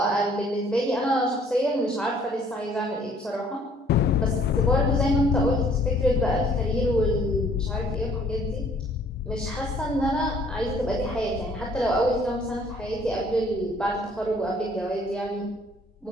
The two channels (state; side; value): normal; both; correlation 0.59